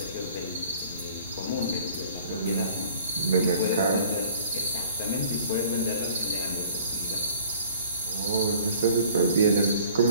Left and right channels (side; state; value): both; inverted; correlation -0.51